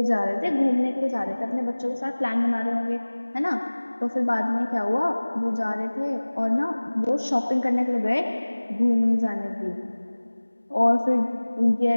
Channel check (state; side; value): inverted; both; correlation -1.00